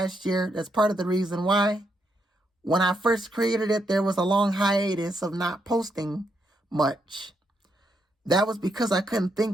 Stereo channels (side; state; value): both; normal; correlation 0.79